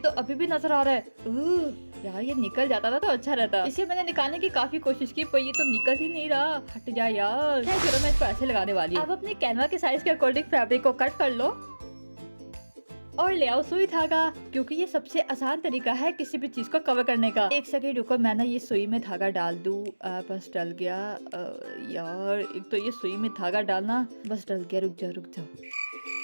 अभी भी नजर आ रहा है। यार, ये निकल जाता था तो अच्छा रहता। इसे मैंने निकालने की काफी कोशिश की, पर ये तो निकल ही नहीं रहा। हट जा यार। चलो, मैं इसको ऐसे लगाने वाली हूँ। अब अपने कैनवा के साइज के अकॉर्डिंग फैब्रिक को कट कर लो और ले आओ सुई धागा, क्योंकि ये सबसे आसान तरीका है किसी भी चीज को कवर करने का। एक सेकंड रुको, मैं ना ये सुई में धागा डाल दूं। बस डल गया। यार, एक तो ये सुई में धागा डालना, बस डल गया। रुक जाओ।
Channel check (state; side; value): inverted; both; correlation -1.00